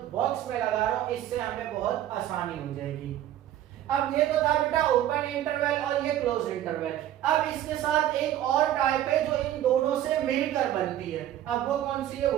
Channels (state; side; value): quieter; left; 12.3 dB